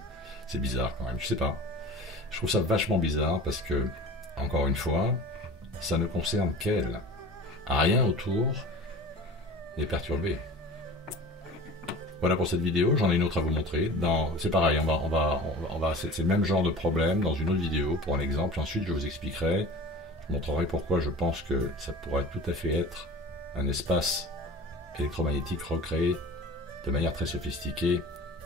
C'est bizarre quand même, je sais pas. Je trouve ça vachement bizarre parce que, encore une fois, ça ne concerne qu'elle. Rien autour n'est perturbé. Voilà pour cette vidéo, j'en ai une autre à vous montrer. C'est pareil, c'est le même genre de problème dans une autre vidéo pour un exemple. Ensuite, je vous expliquerai, je montrerai pourquoi je pense que ça pourrait tout à fait être un espace électromagnétique recréé de manière très sophistiquée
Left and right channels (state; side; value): normal; both; correlation 0.39